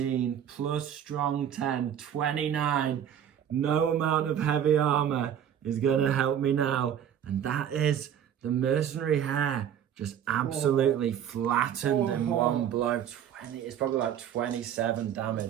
plus strong 10, 29. No amount of heavy armour is going to help me now. And that is the mercenary hair just absolutely flattened in one blow. It's probably like 27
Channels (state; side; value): quieter; left; 9.4 dB